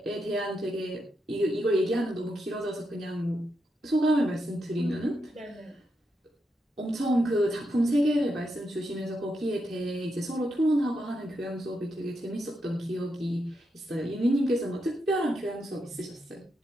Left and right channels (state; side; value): normal; both; correlation 0.83